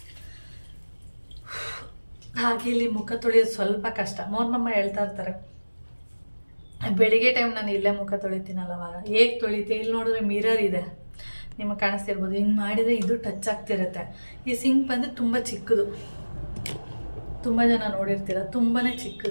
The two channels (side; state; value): both; inverted; correlation -1.00